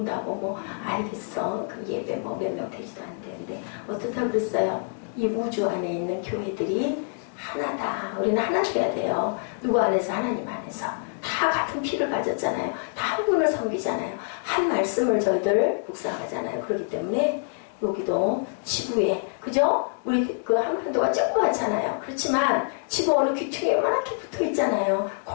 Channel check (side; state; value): right; silent; digital silence